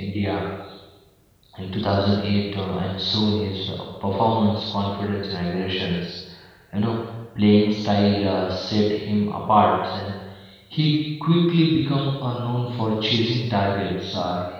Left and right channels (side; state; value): both; identical; correlation 1.00